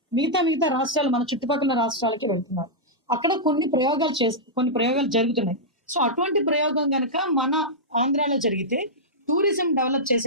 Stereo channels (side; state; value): both; normal; correlation -0.10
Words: మిగతా రాష్ట్రాలు మన చుట్టుపక్కల రాష్ట్రాలకి వెళ్తున్నారు. అక్కడ కొన్ని ప్రయోగాలు జరుగుతున్నాయి. సో అటువంటి ప్రయోగం కనుక మన ఆంధ్రాలో జరిగితే టూరిజం డెవలప్